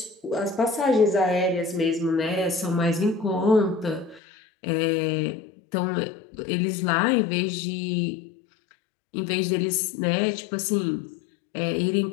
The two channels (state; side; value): drops out; right; at 4.2 s